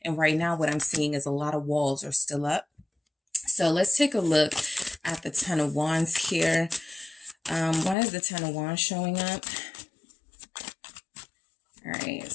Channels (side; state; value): right; drops out; at 8.0 s